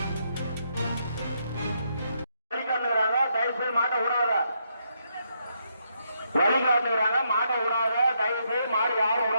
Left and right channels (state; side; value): inverted; both; correlation -0.77